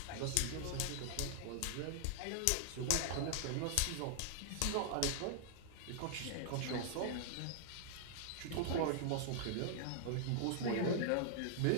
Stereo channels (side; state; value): both; different; correlation -0.01